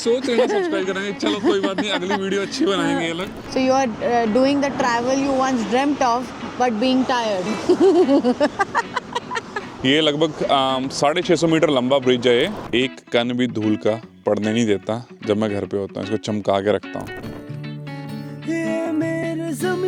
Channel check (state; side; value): identical; both; correlation 1.00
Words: रहे सब्सक्राइब करेंगे। चलो कोई बात नहीं, अगली वीडियो अच्छी बनाएंगे ये लोग। So you are doing the travel you once dreamt of but being tired. ये लगभग 650 मीटर लंबा ब्रिज है। ये एक कण भी धूल का पड़ने नहीं देता। जब मैं घर पे होता हूँ इसको चमका के रखता हूँ। ये मेरे